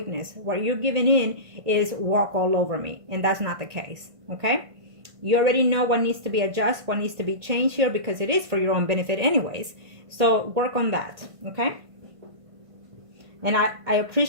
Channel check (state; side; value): late; left; 1.5 ms